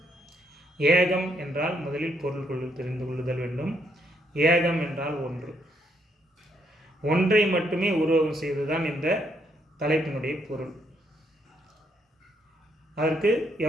ஏகம் என்றால் முதலில் பொருள் தெரிந்து கொள்ளுதல் வேண்டும். ஏகம் என்றால் ஒன்று. ஒன்றை மட்டுமே உருவகம் செய்வதுதான் இந்த தலைப்பினுடைய பொருள். அதற்கு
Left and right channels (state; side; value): normal; both; correlation 0.73